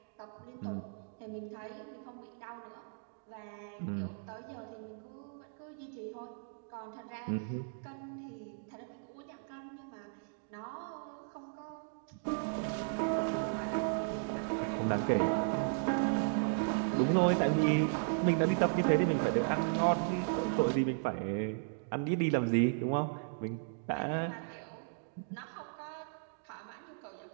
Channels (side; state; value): left; silent; digital silence